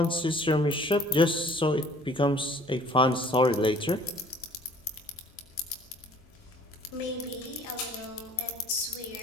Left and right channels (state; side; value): normal; both; correlation 0.53